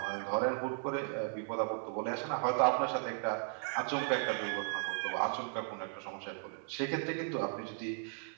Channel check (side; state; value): left; silent; 54 dB below the other